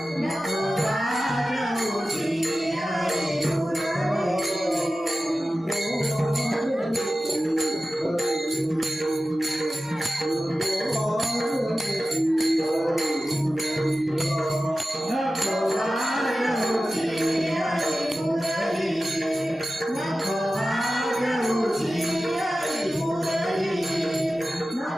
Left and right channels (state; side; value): normal; both; correlation 0.95